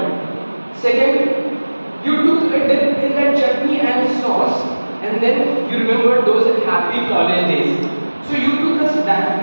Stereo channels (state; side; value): inverted; both; correlation -1.00